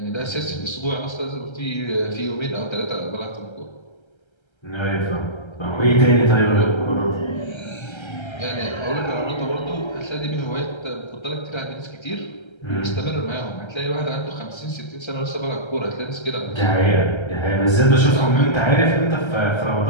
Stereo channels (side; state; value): right; late; 1.3 ms